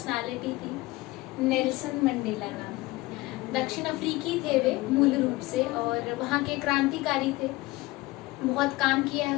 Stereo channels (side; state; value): right; quieter; 20.2 dB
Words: थी नेल्सन मंडेला नाम। दक्षिण अफ्रीकी थे वे मूल रूप से और वहाँ के क्रांतिकारी थे, बहुत काम किया है